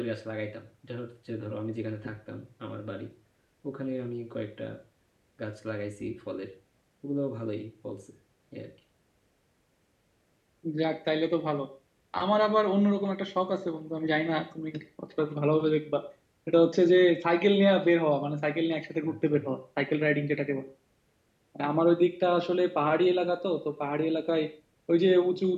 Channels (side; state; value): both; identical; correlation 1.00